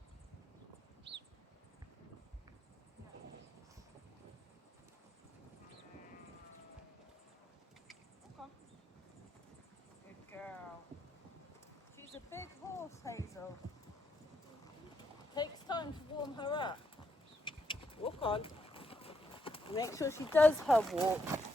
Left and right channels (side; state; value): both; normal; correlation 0.78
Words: Hazel. Takes time to warm her up. Walk on. Make sure she does her walk.